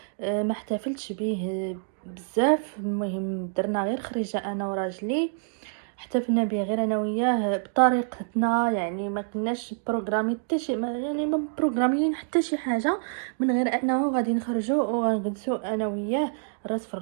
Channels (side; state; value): left; silent; digital silence